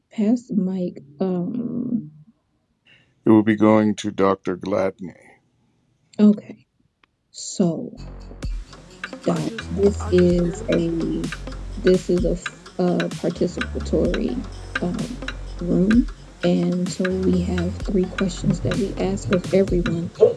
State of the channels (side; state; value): both; identical; correlation 1.00